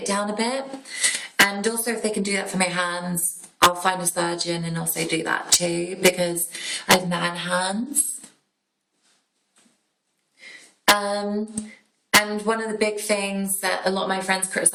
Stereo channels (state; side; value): identical; both; correlation 1.00